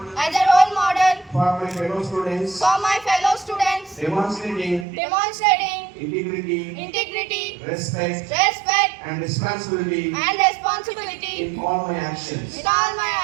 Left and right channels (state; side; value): drops out; left; at 4.9 s